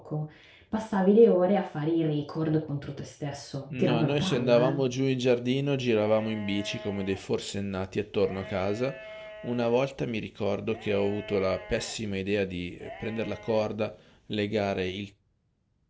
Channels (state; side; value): identical; both; correlation 1.00